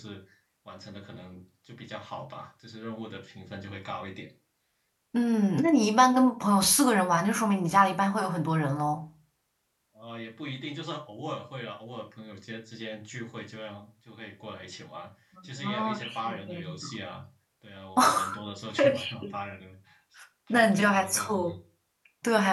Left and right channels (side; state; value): both; identical; correlation 1.00